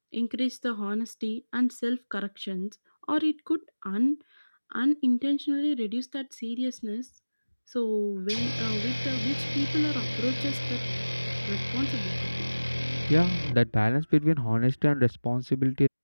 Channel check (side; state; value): both; inverted; correlation -1.00